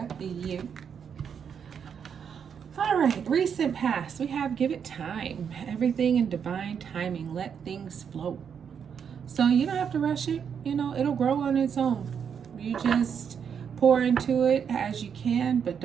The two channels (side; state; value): left; quieter; 7.4 dB